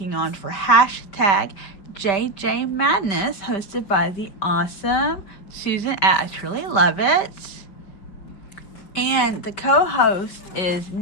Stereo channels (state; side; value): late; right; 5.2 ms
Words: on for hashtag JJ Madness, hosted by the awesome Susan at I Truly Love It. And the co-host is